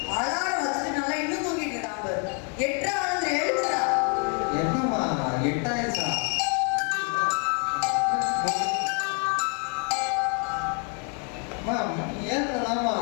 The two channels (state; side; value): quieter; right; 38.7 dB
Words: அலாரம் வச்சுட்டு நல்லா இன்னும் தூங்கிட்டு இருக்கான். எட்டா வந்து எழுதுறா. என்னம்மா 8 ஆயிடுச்சா? ஏன்லாமா